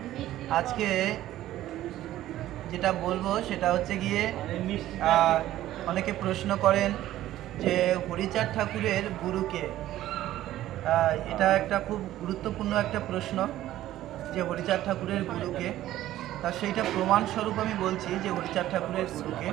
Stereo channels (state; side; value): quieter; left; 14.0 dB